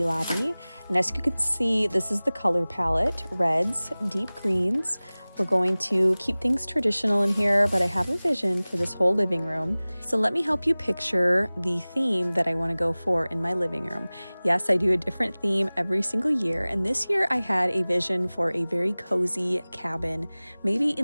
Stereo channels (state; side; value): inverted; both; correlation -0.99